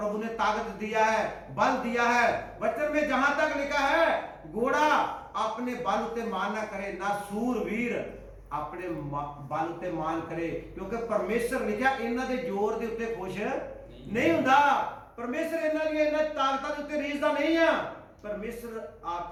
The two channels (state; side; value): identical; both; correlation 1.00